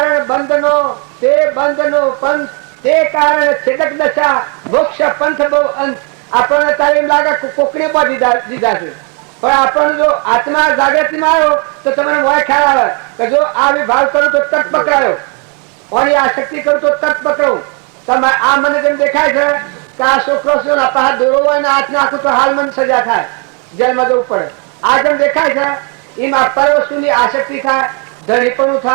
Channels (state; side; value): quieter; left; 31.8 dB